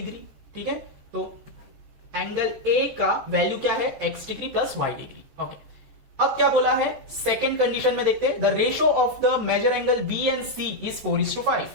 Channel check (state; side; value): late; left; 14 ms